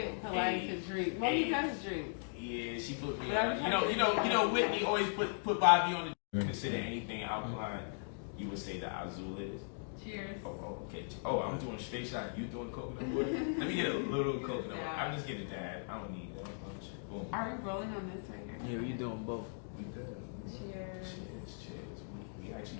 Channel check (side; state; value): right; silent; digital silence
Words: Polight to drink. Well, he does drink. Yeah, she put me on. You know, Whitney always put Bobby on the. Consider anything alkaline, you would say the Azul is. Cheers. Oh, okay. Oh, I'm doing straight shot. You doing coconut water? Let me get a little coconut water. I'm just getting that. I don't need that much. Boom. Are we rolling on this right now? Yeah, we doing both. We good. Cheers. Cheers. We